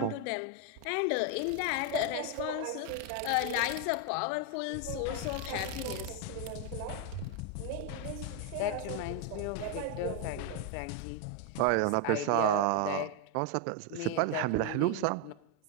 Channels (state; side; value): different; both; correlation 0.01